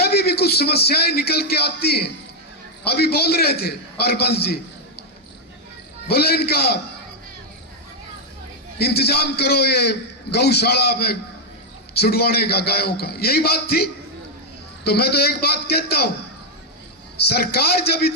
भी कुछ समस्याएं निकल के आती हैं। अभी बोल रहे थे हरबंस जी, बोले इनका इंतजाम करो ये गौशाला में छुड़वाने का, गायों का, यही बात थी। तो मैं तो एक बात कहता हूं, सरकार जब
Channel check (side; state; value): both; normal; correlation -0.01